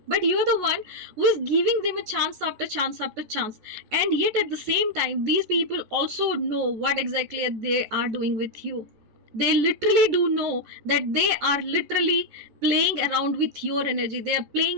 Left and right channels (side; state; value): left; late; 14 ms